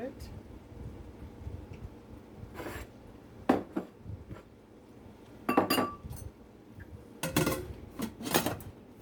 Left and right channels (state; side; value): identical; both; correlation 1.00